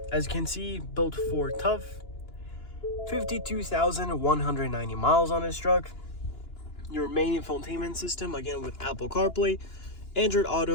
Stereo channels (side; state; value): right; late; 2.9 ms